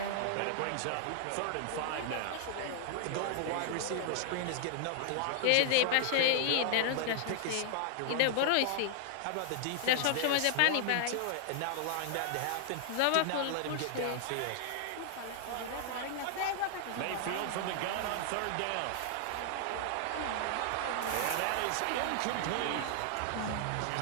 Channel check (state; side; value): different; both; correlation -0.01